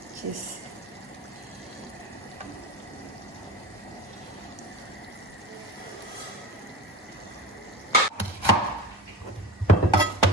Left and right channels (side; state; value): both; normal; correlation 0.31